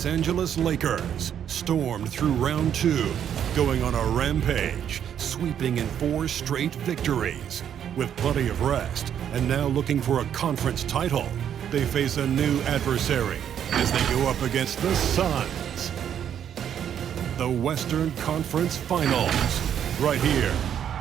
Angeles Lakers stormed through round 2, going on a rampage, sweeping in 4 straight victories. With plenty of rest, and now looking for a conference title, they face a new adversary as they go up against the SUNS. The Western Conference Finals, right here,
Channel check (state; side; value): quieter; left; 9.2 dB